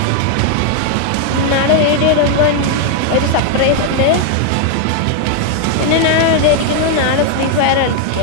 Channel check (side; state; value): both; different; correlation 0.00